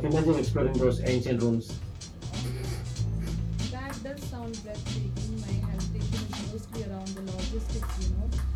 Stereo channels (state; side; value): identical; both; correlation 1.00